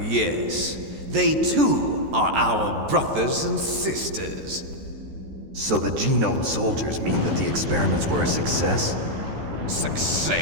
they too are our brothers and sisters. So the genome soldiers mean that the experiments were a success?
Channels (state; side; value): late; left; 14 ms